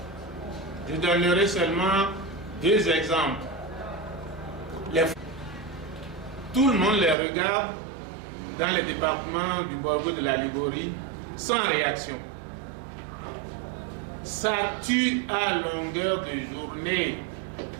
Je donnerai seulement 2 exemples. Tout le monde les regarde dans les départements du Borgo de la Liguori sans réaction. Ça tue à longueur de journée.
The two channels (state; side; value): drops out; left; at 7.2 s